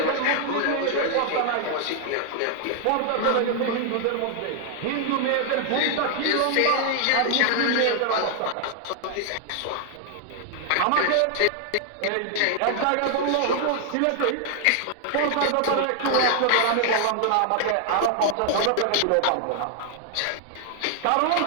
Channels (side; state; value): both; different; correlation 0.00